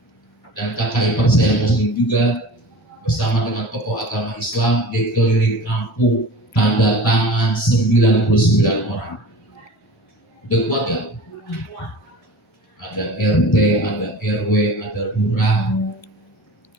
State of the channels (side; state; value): both; normal; correlation 0.38